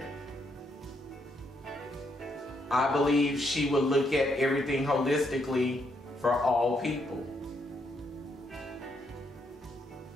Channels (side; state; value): both; normal; correlation 0.76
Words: I believe she would look at everything holistically for all people.